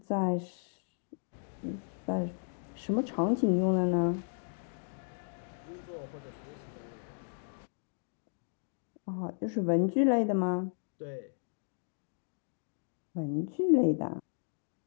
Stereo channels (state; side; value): silent; right; digital silence